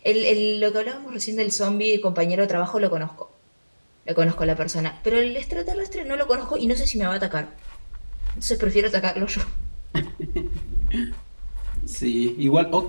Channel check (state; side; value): inverted; both; correlation -1.00